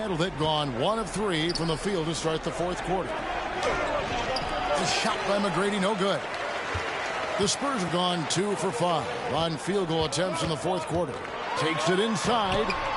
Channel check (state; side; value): identical; both; correlation 1.00